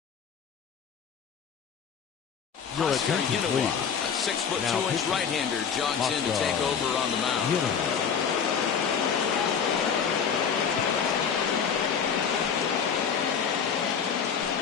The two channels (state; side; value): quieter; right; 6.9 dB